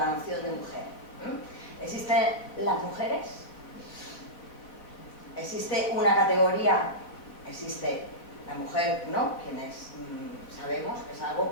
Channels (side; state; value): right; late; 3.9 ms